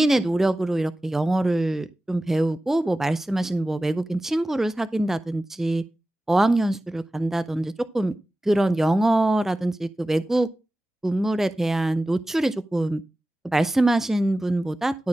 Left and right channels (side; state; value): both; normal; correlation 0.96